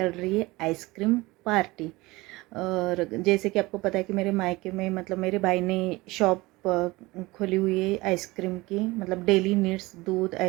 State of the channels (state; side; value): quieter; left; 21.4 dB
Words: रही है आइसक्रीम पार्टी। और जैसे कि आपको पता है कि मेरे मायके में मतलब मेरे भाई ने शॉप खोली हुई है आइसक्रीम की, मतलब डेली नीड्स दूध